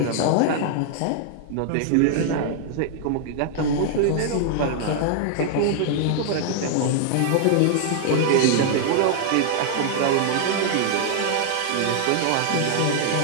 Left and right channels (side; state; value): both; different; correlation -0.01